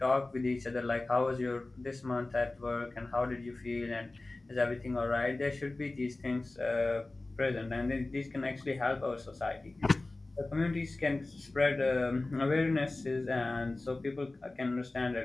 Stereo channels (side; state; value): right; quieter; 3.0 dB